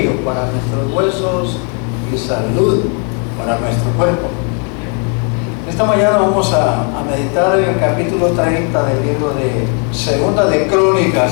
para nuestros huesos y salud para nuestro cuerpo. Esta mañana vamos a meditar en el capítulo 30 del libro de Segunda de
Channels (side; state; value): right; quieter; 39.5 dB